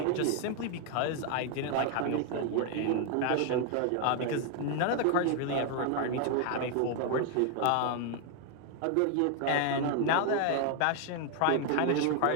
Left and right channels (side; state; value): both; different; correlation 0.00